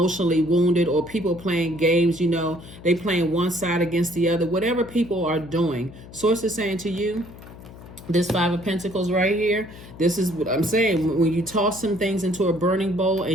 wounded, or people playing games, you know, they playing one side against the other. Whatever people are doing, Source is saying to you, this Five of Pentacles right here, this is what I'm saying. When you toss some things into a burning bowl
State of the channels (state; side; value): noise; left; hum, 17 dB below the sound